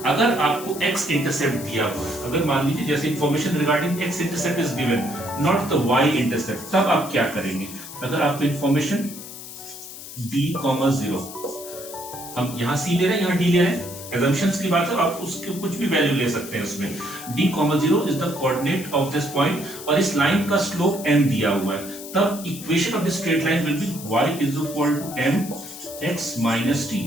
अगर आपको x इंटरसेप्ट दिया हुआ है, अगर मान लीजिए जैसे information regarding x intercept is given, not the y intercept, तब आप क्या करेंगे? अगर आपको इंफॉर्मेशन d, 0, हम यहां c ले रहे हैं, यहां d ले रहे हैं, assumptions की बात है, आप उसके कुछ भी वैल्यू ले सकते हैं उसमें। d, 0 is the coordinate of this point और इस लाइन का स्लोप m दिया हुआ है, तब equation of this straight line will be y is equal to m x minus t।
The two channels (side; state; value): left; noise; hiss, 13 dB below the sound